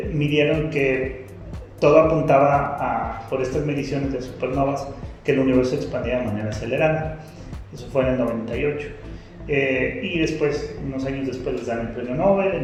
midieron que todo apuntaba por estas mediciones de supernovas que el universo expandía de manera acelerada. Eso fue en el 98. Y después, unos años después, les dan el premio Nobel.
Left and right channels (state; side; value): identical; both; correlation 1.00